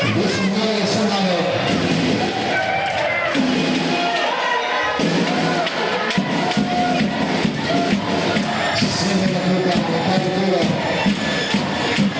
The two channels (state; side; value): identical; both; correlation 1.00